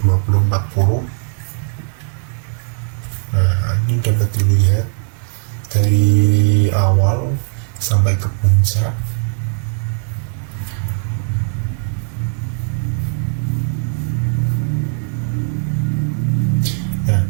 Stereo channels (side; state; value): left; silent; digital silence